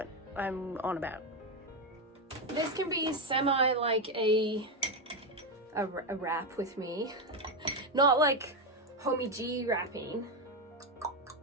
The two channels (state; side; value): normal; both; correlation 0.08